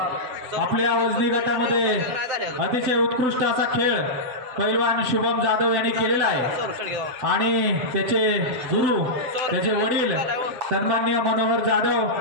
आपल्या वजनी गटामध्ये अतिशय उत्कृष्ट असा खेळ पैलवान शुभम जाधव यांनी केलेला आहे आणि त्याचे गुरु त्याचे वडील सन्माननीय मनोहर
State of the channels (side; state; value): left; late; 7.9 ms